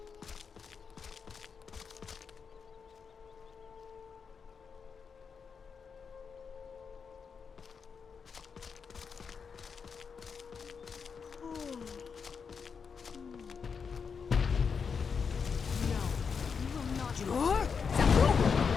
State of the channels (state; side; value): quieter; right; 6.0 dB